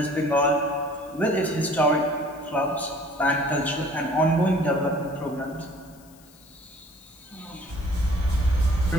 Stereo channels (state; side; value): noise; left; hiss, 26 dB below the sound